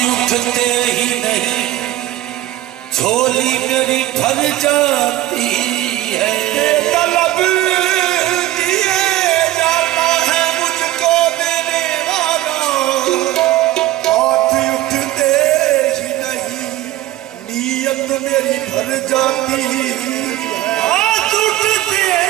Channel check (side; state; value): left; quieter; 15.0 dB